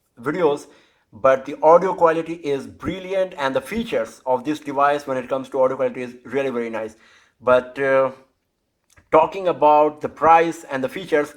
videos, but the audio quality is brilliant, and the features of this device when it comes to audio quality is really very nice. But talking about the price and the features,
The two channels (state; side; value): identical; both; correlation 1.00